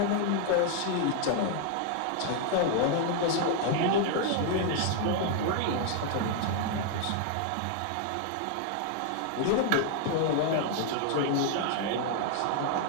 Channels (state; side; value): different; both; correlation 0.00